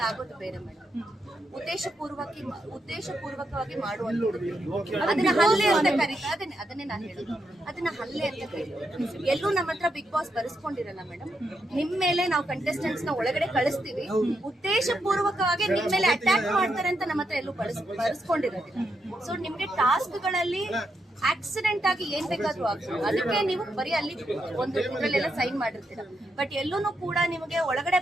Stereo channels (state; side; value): normal; both; correlation 0.82